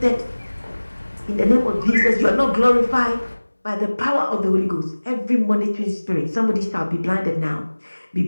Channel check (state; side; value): inverted; both; correlation -1.00